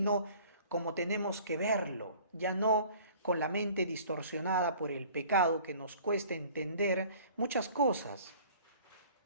como tenemos que verlo, ya no con la mente distorsionada por el pecado que nos cuesta entender muchas cosas.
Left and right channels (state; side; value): inverted; both; correlation -0.50